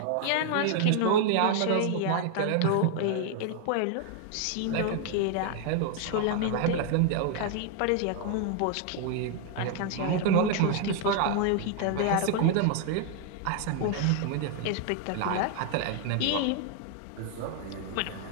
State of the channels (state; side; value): different; both; correlation 0.00